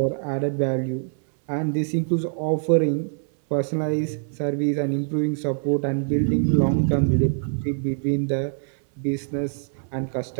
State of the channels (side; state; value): left; silent; 62 dB below the other